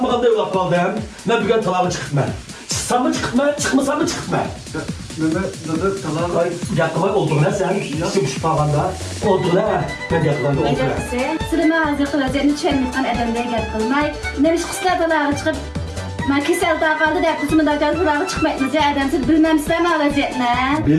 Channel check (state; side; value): identical; both; correlation 1.00